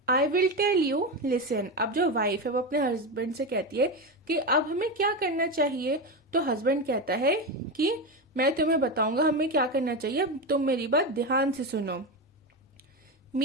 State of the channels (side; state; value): both; normal; correlation 0.16